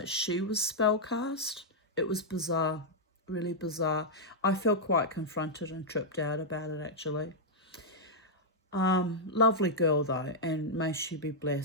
she was spellcast. It was bizarre, really bizarre. I felt quite confronted and tripped out about it, actually. Lovely girl, though, and may she be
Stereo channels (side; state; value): both; normal; correlation -0.05